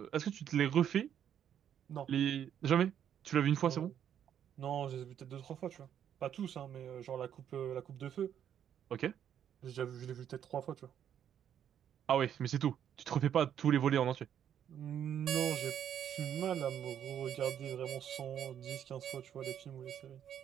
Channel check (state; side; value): quieter; left; 9.4 dB